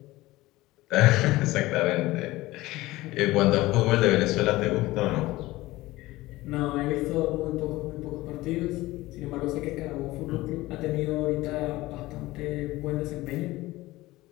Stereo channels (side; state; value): right; quieter; 18.6 dB